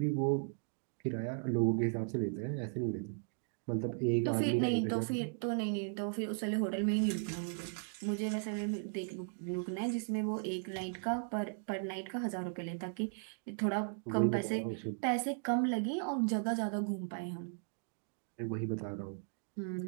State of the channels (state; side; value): silent; left; digital silence